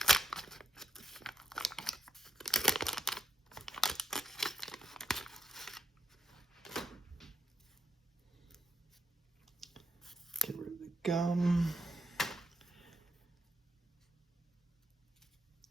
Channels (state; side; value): normal; both; correlation 0.81